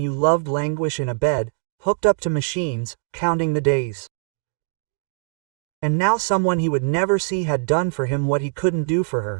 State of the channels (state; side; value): silent; left; digital silence